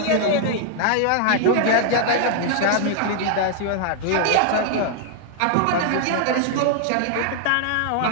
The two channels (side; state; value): both; different; correlation 0.00